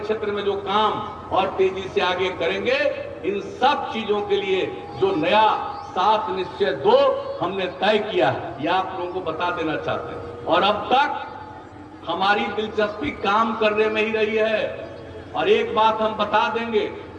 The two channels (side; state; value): both; identical; correlation 1.00